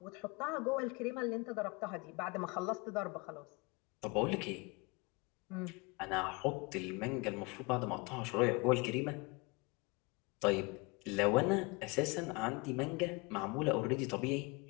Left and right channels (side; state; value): right; quieter; 27.5 dB